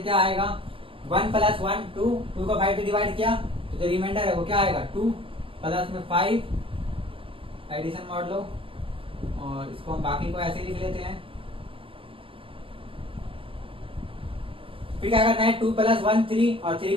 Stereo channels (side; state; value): left; late; 0.26 ms